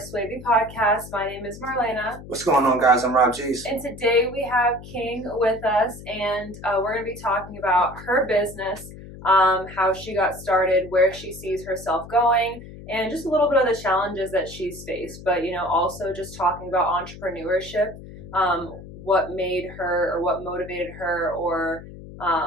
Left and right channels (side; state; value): left; noise; hum, 15 dB below the sound